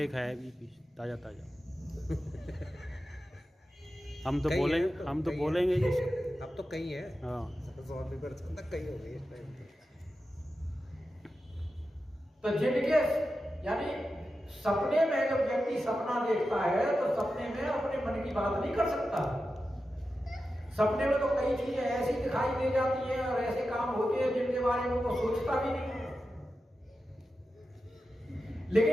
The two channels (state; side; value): normal; both; correlation 0.91